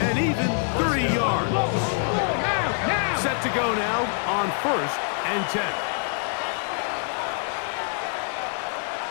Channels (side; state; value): right; silent; 62 dB below the other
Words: And even 30 yards. Set to go now on 1st and 10.